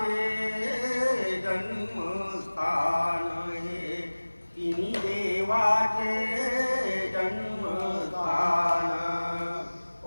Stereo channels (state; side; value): inverted; both; correlation -1.00